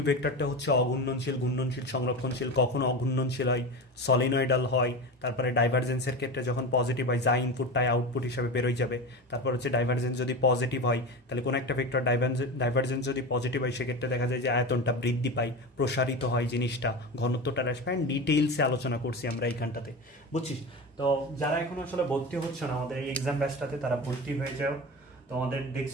ভেক্টরটা হচ্ছে অঘূর্ণনশীল, ঘূর্ণনশীল, সংরক্ষণশীল। কখনো অঘূর্ণনশীল হয়, সলিনয়েডাল হয়। তারপরে ডাইভারজেন্সের ক্ষেত্রে যখন পজিটিভ হয়, যা ইনপুট তাই আউটপুট হিসাবে বেরোয় যাবে। তারপর হচ্ছে ডাইভারজেন্স যদি পজিটিভ হয়, তাহলে কোনো একটা ভেক্টর ডাইভারজেন্স যদি পজিটিভ হয়, সেক্ষেত্রে দেখা যায় যে আয়তনটা বৃদ্ধি পায়, প্রসারিত হয় জিনিসটা, ঘনত্বটা হ্রাস পায়। ডিটেইলসে আলোচনা করছি আমরা এইখানটাতে, বুঝছিস? তো যারা এখন আসলে ভর্তি হচ্ছে না আমাদের এই এক্সাম ব্যাচটাতে, তারা ভর্তি হয়ে যাও। তোমাদের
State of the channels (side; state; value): both; normal; correlation 0.26